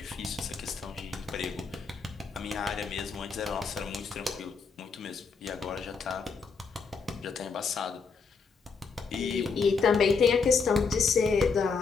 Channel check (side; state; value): right; quieter; 5.1 dB